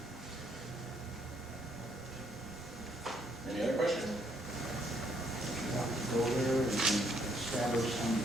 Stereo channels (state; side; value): normal; both; correlation 0.70